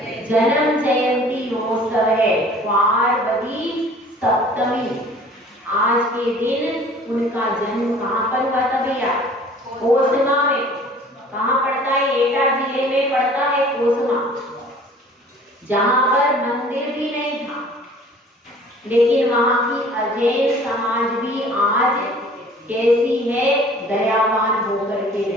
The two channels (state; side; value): normal; both; correlation 0.50